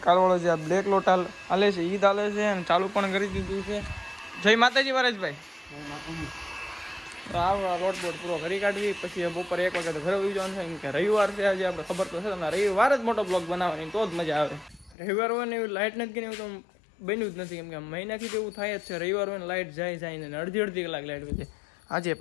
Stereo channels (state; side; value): drops out; right; at 15.0 s